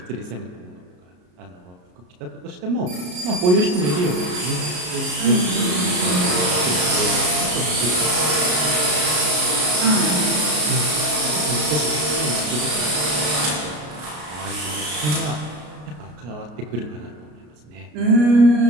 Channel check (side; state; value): left; late; 33 ms